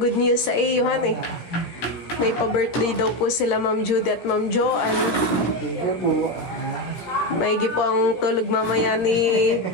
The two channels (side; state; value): right; late; 17 ms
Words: news sa iyo, eh. May pa-birthday daw po sila Ma'am Judy at Ma'am Joanne. Maigi po ang tulog mamaya ni